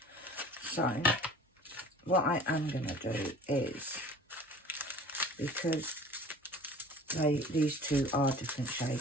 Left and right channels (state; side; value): normal; both; correlation 0.45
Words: So what I am going to do is, because these two are different